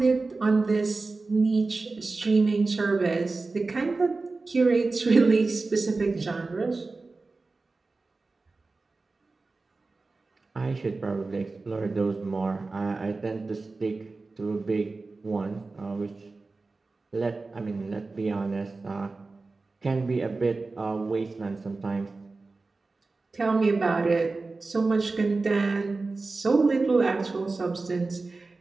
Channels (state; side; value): quieter; left; 3.7 dB